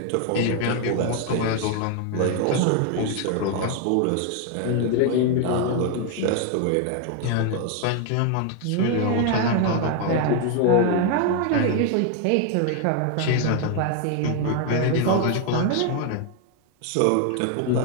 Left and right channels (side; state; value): both; different; correlation 0.01